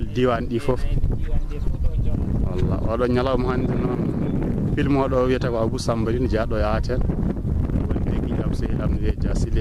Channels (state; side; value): identical; both; correlation 1.00